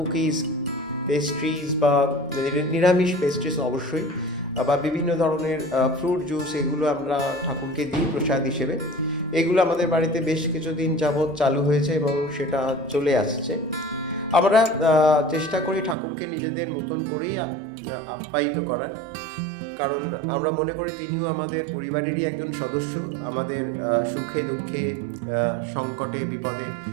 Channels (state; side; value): drops out; left; at 16.0 s